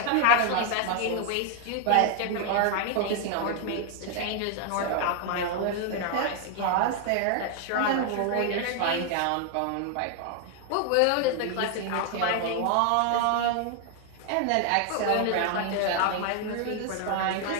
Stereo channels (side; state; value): both; different; correlation 0.00